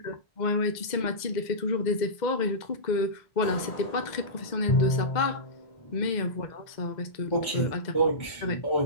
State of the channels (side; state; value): right; late; 2.0 ms